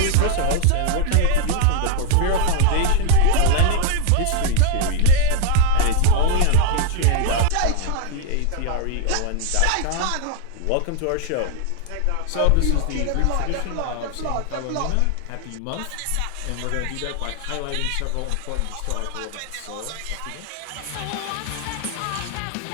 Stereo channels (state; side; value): different; both; correlation 0.01